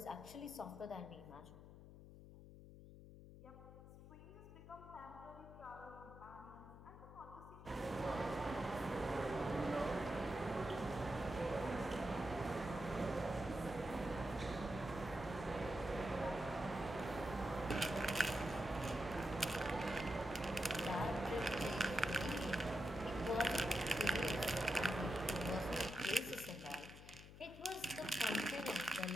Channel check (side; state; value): left; noise; hum, 15 dB below the sound